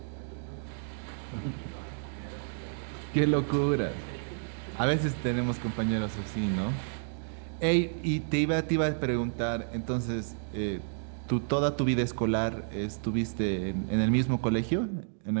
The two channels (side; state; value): left; silent; digital silence